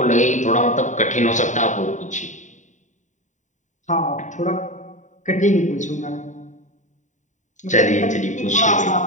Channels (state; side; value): late; right; 0.36 ms